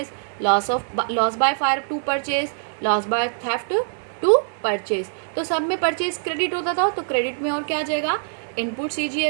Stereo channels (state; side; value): silent; left; 63 dB below the other